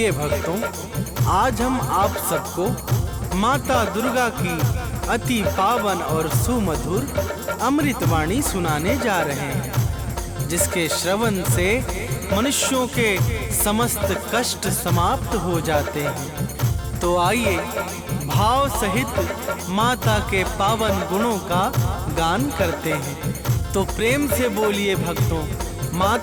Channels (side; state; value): both; identical; correlation 1.00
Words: भक्तों, आज हम आप सबको माता दुर्गा की अति पावन और सुमधुर अमृतवाणी सुनाने जा रहे हैं, जिसके श्रवण से मनुष्यों के समस्त कष्ट समाप्त हो जाते हैं। तो आइए भाव सहित माता के पावन गुणों का गान करते हैं। तो प्रेम से बोलिए भक्तों,